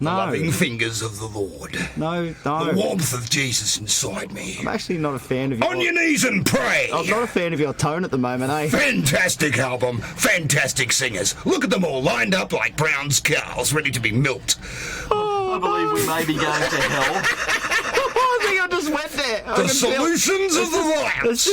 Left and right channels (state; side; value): identical; both; correlation 1.00